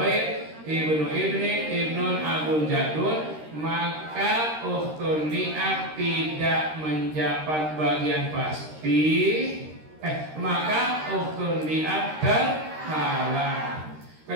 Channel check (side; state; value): left; late; 13 ms